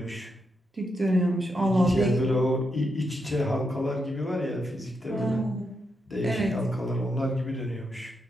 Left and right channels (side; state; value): both; normal; correlation 0.83